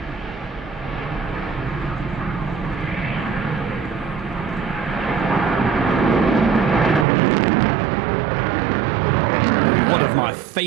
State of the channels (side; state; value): left; drops out; at 7.1 s